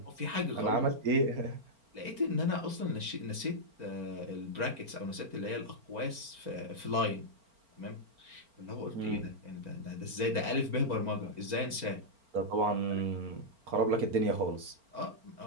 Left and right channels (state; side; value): late; left; 4.4 ms